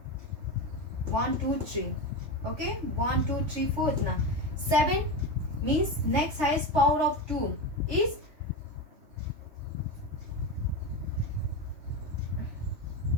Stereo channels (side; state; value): left; late; 3.3 ms